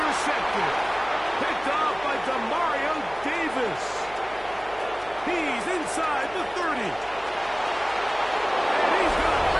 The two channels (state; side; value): noise; right; hum, 21 dB below the sound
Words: Picked off by Demario Davis. He's inside the 30. And he's going to